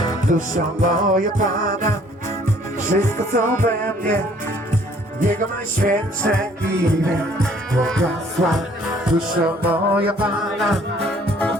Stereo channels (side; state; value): both; normal; correlation 0.59